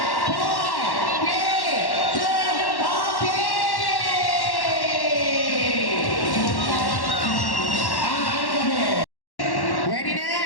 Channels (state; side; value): late; right; 1.1 ms